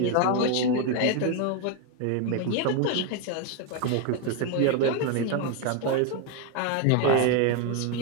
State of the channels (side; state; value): both; different; correlation 0.01